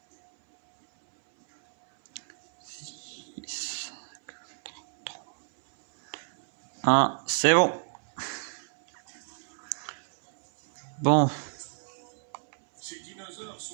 C'est bon. Bon. Ces dinosaures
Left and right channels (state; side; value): silent; left; 58 dB below the other